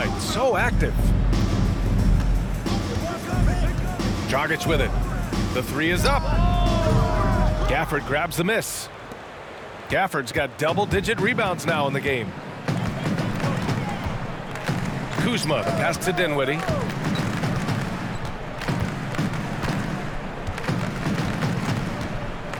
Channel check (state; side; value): identical; both; correlation 1.00